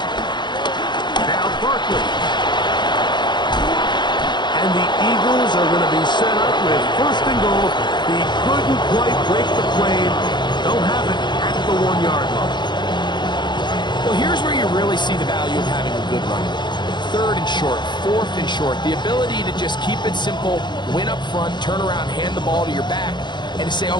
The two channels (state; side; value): late; right; 0.22 ms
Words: Now Barkley. And the Eagles are going to be set up with 1st and goal. He couldn't quite break the plane. They'll have it at the 1-yard line. Well, here's where you really see the value of having a good run. 3rd and short, 4th and short. The ability to just keep it simple, win up front, turn around, hand the ball to your back, and to say,